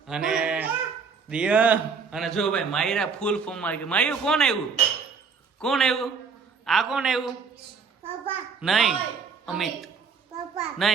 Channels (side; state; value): left; quieter; 5.5 dB